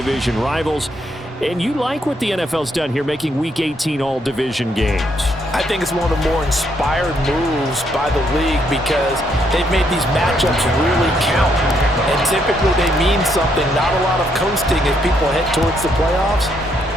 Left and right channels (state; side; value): normal; both; correlation 0.74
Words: rivals. And you like what the NFL's done here, making Week 18 all-division games. I think it's one of the more inspired moves by the league because they've made these matchups really count. And typically they mean something, not a lot of coasting as people head towards the playoffs.